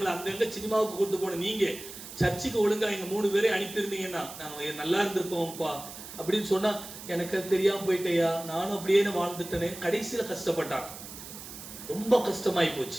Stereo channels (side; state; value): right; noise; hiss, 13 dB below the sound